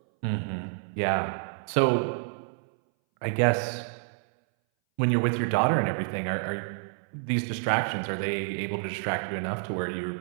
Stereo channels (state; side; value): silent; left; 59 dB below the other